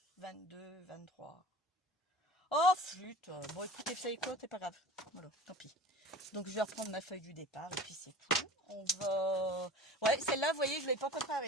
22, 23. Oh, flûte. Bon, écoutez, vous savez quoi, c'est pas grave. Voilà, tant pis. Donc, je vais reprendre ma feuille du départ et puis c'est tout. On va... Ouais, celle-là, vous voyez, je ne l'ai pas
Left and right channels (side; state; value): both; normal; correlation 0.39